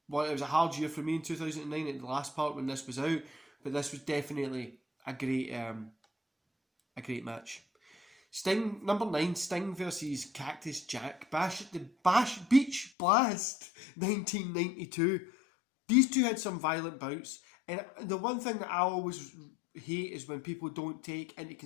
well, it was a hard year for me in 2009 at the last part when this was out, but this was definitely a great match. Sting, number 9, Sting versus Cactus Jack, Beach Blast 1992. These two had some violent bouts, and the one thing that I always hate is when people don't take into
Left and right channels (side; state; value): right; drops out; at 12.9 s